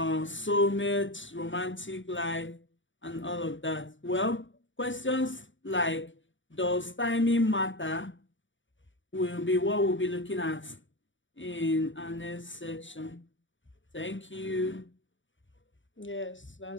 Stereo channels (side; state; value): right; late; 0.55 ms